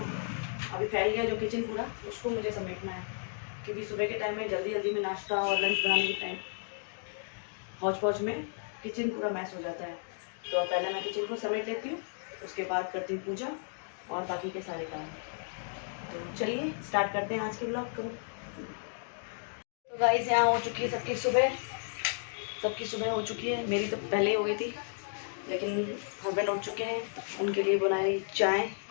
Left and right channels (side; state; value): right; silent; digital silence